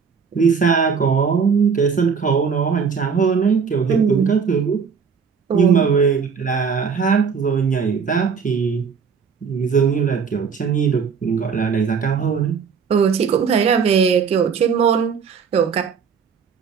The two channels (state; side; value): quieter; left; 6.1 dB